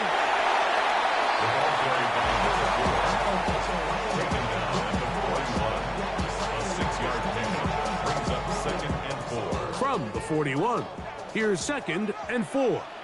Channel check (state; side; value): identical; both; correlation 1.00